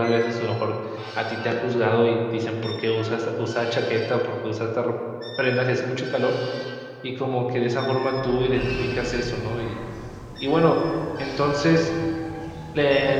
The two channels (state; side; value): identical; both; correlation 1.00